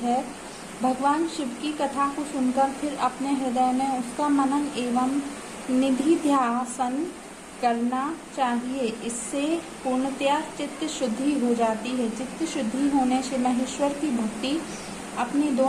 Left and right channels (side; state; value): both; identical; correlation 1.00